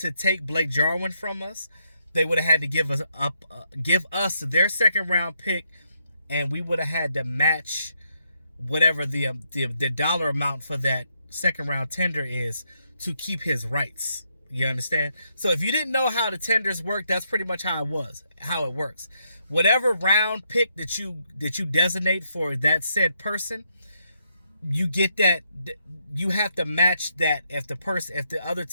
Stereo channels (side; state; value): both; inverted; correlation -0.78